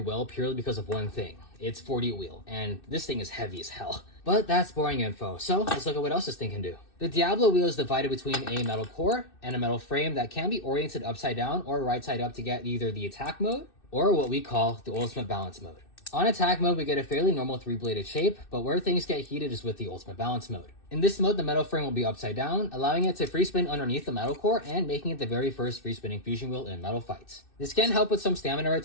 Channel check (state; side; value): late; right; 2.6 ms